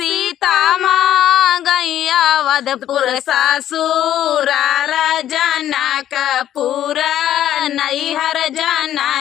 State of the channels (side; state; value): right; quieter; 11.5 dB